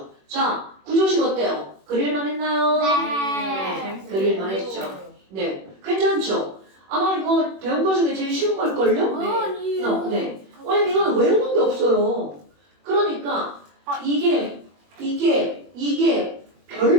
자, 구조식 어때요? 그릴만 했나요? 네. 그릴만 했죠. 네, 괜찮죠? 아마 이거 배운 거 중에 제일 쉬운 걸걸요? 네. 왜냐면 이거는 외우는 게 없어요. 그러니까 이게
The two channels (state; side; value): late; left; 21 ms